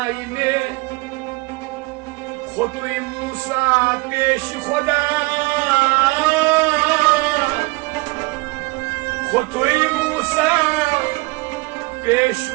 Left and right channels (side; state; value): left; quieter; 24.6 dB